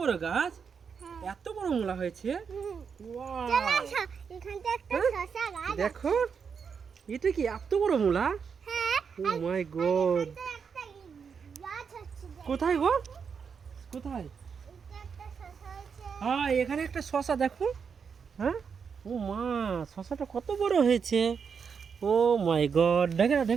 বড় গাছ, এত বড় মূলা হয়েছে। ওয়াও, চলো আসো, এখানটা একটা শসা গাছ আছে। দেখো, এটা কি এত বড় মূলা? হ্যাঁ, ও মাই গড, এখানটা একটা গাছ আছে। কোথায় গো, কোথায়? এটা একটা শসা আছে। হ্যাঁ, এখানে একটা শসা দেখো। হ্যাঁ, ও মা, শসাটা কত বড় হয়েছে। ও মাই গড, দেখে না,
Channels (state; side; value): quieter; left; 6.3 dB